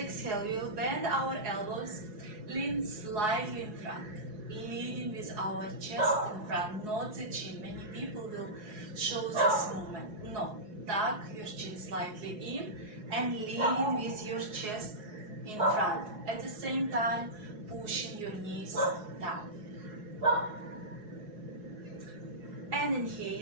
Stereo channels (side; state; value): left; late; 4.7 ms